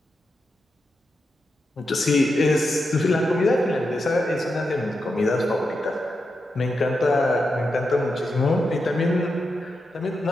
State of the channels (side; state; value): both; normal; correlation 0.87